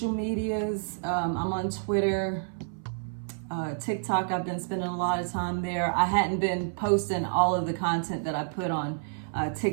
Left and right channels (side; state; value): left; silent; 56 dB below the other